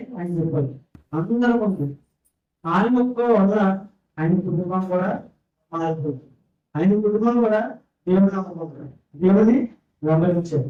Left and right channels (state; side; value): identical; both; correlation 1.00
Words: ఆయన చెప్పాలి. అందరూ ఉంది. ఆయన ఒక్క వల్ల ఆయన కుటుంబం కూడా మారిపోతుంది. ఆయన కుటుంబం కూడా దేవుని నమ్మకం, దేవుని వెంబడించారు.